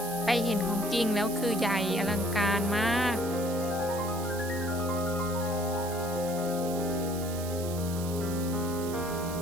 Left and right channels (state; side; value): noise; right; hiss, 12 dB below the sound